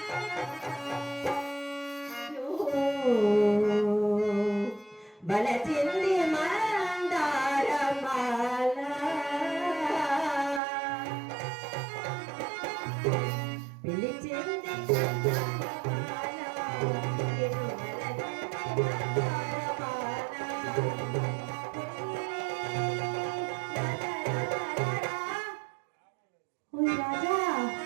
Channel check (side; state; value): left; drops out; at 10.6 s